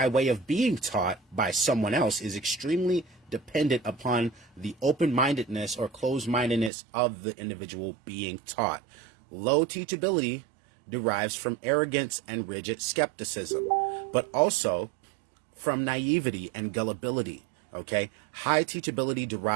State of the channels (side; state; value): left; drops out; at 6.7 s